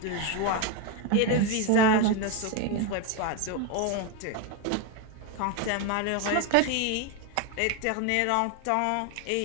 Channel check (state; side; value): different; both; correlation 0.02